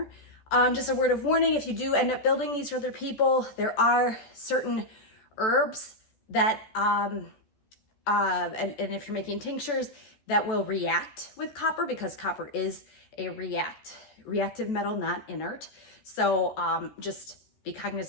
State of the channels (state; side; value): late; right; 14 ms